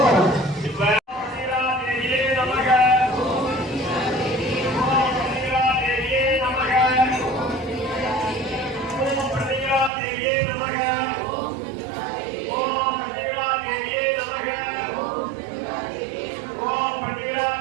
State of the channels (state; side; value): drops out; left; at 9.9 s